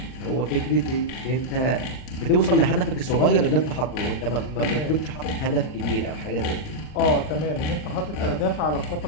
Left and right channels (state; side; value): late; right; 39 ms